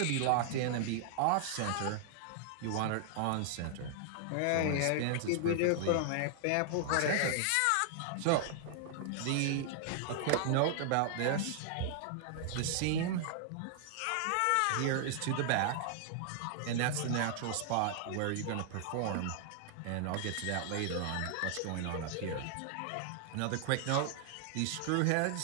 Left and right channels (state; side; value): different; both; correlation 0.00